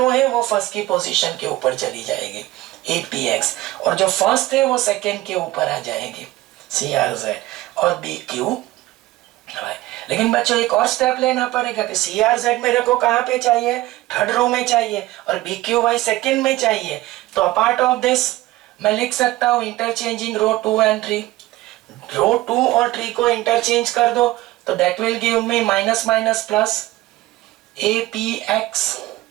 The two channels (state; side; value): quieter; left; 17.6 dB